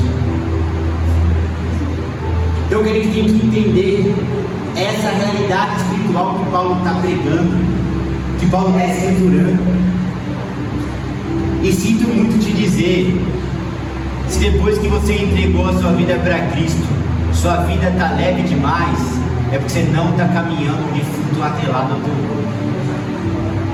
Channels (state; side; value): identical; both; correlation 1.00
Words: Então a gente tem que entender essa realidade espiritual que Paulo está pregando, que Paulo está escriturando. E sinto muito te dizer, se depois que você entregou a sua vida para Cristo, sua vida está leve demais, é porque você não está caminhando de fruto atrelado ao teu corpo.